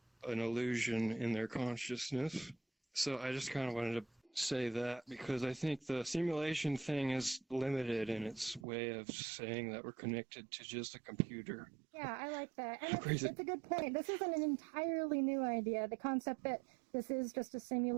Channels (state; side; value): drops out; left; at 8.7 s